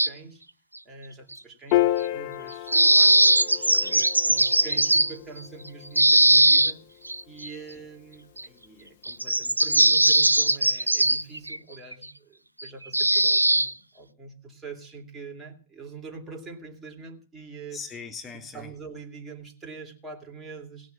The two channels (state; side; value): inverted; both; correlation -0.91